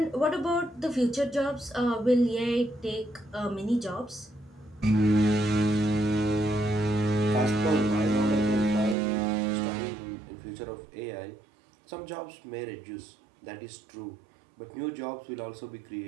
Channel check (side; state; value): left; drops out; at 9.0 s